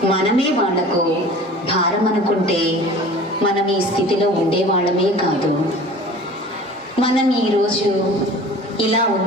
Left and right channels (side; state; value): both; normal; correlation 0.43